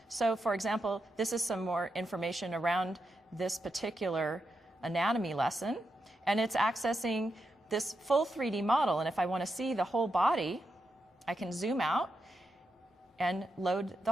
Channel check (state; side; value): normal; both; correlation 0.86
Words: So for example, this is some more information around this particular anatomy lesson, and it's accessing this full 3D model. And if I want to see the whole body, I can zoom out and load the